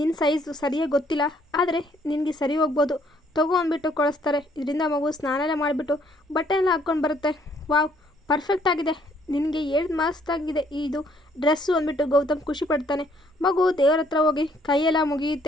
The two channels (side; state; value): both; normal; correlation 0.65